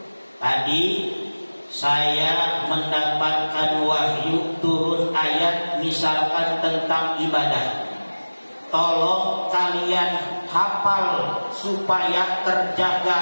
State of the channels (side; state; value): both; inverted; correlation -1.00